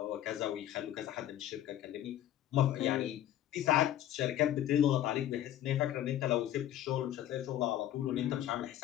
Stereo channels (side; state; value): right; quieter; 12.2 dB